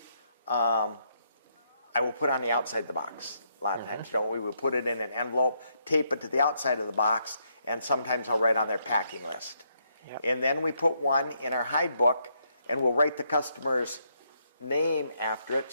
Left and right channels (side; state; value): both; inverted; correlation -0.76